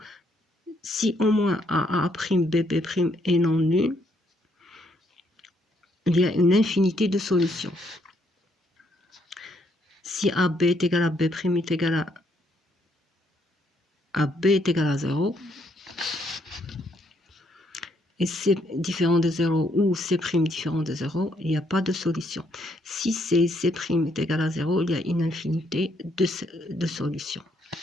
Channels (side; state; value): both; normal; correlation 0.71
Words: si au moins AA', BB' est non nul, il y a une infinité de solutions. Si AB est égal à B' est égal à B est égal à 0, et C différent de 0 ou C' différent de 0, il n'y a pas de solution. Si C est égal à 0, il y a une infinité de solutions.